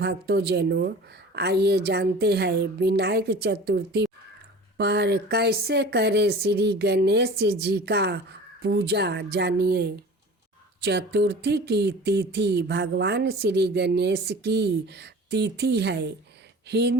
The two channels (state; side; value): normal; both; correlation 0.40